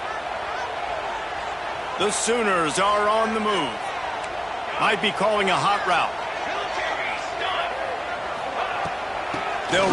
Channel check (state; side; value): identical; both; correlation 1.00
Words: The Sooners are on the move. Might be calling a hot route. They'll